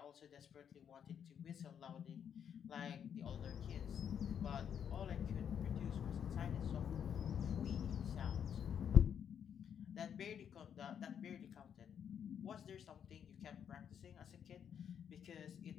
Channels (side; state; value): right; quieter; 8.3 dB